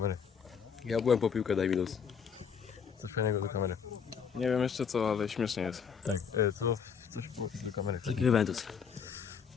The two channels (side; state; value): right; quieter; 6.7 dB